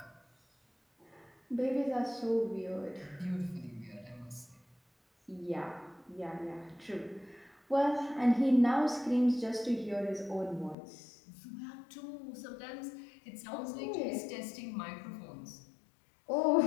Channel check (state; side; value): drops out; right; at 10.8 s